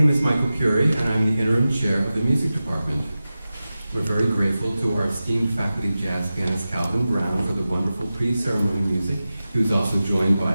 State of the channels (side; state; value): both; inverted; correlation -0.94